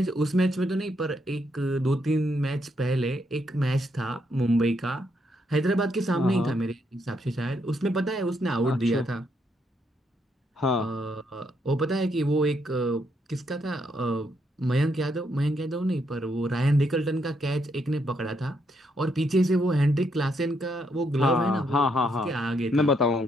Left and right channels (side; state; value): both; normal; correlation 0.76